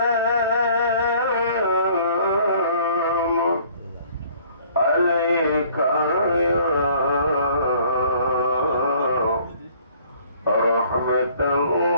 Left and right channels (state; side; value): inverted; both; correlation -0.57